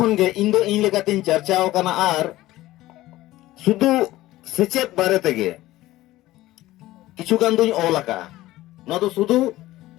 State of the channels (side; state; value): right; quieter; 16.5 dB